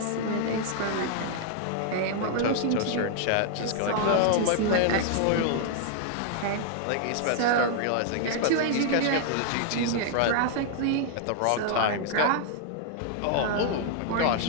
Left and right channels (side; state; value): both; different; correlation -0.01